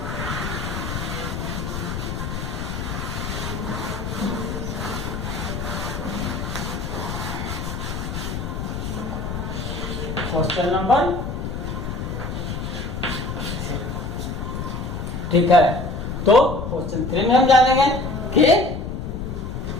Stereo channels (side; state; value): left; noise; rumble, 4 dB below the sound